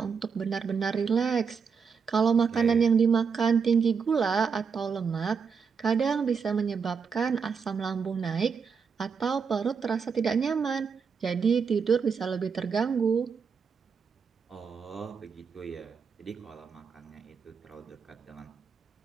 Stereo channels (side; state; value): left; quieter; 5.9 dB